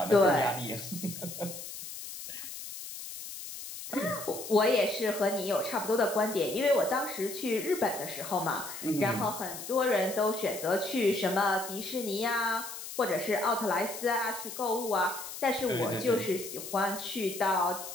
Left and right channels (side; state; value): left; noise; hiss, 10 dB below the sound